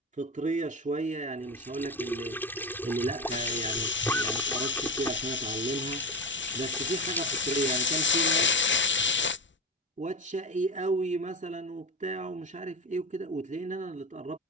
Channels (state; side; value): normal; both; correlation 0.22